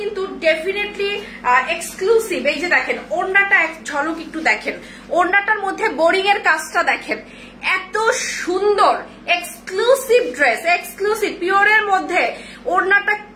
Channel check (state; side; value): identical; both; correlation 1.00